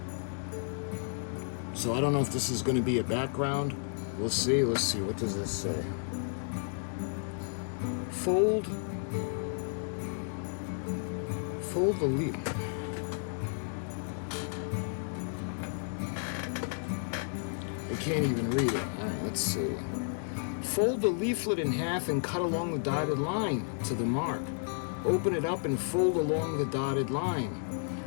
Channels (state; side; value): silent; right; 56 dB below the other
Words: so I don't know if this is going to be a background. We'll see. Let's see. What does this say? Fold the leaf. I can't even read it. All right, let's see. Fold the leaflet in half and cut along the dotted line to the mark. Open it up and fold along the dotted line.